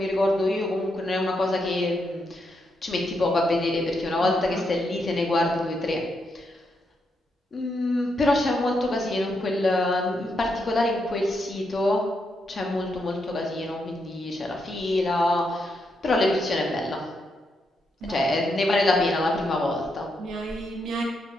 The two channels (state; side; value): normal; both; correlation 0.81